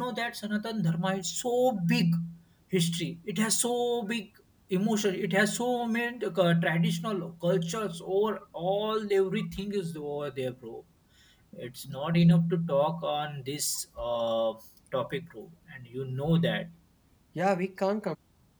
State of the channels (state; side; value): identical; both; correlation 1.00